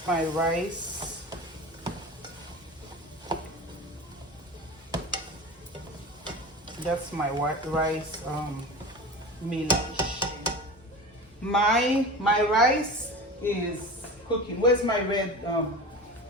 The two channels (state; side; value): normal; both; correlation 0.32